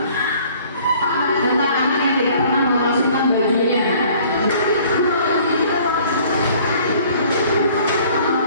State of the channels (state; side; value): inverted; both; correlation -0.54